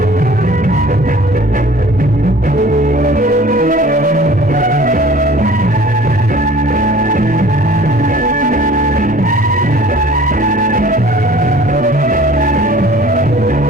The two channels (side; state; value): both; normal; correlation 0.48